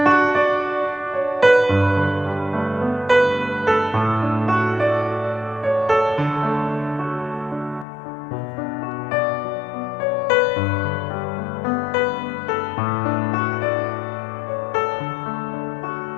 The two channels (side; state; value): right; drops out; at 7.9 s